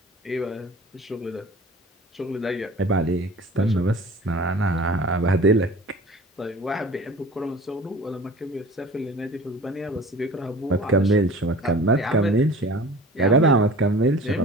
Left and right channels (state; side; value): normal; both; correlation 0.42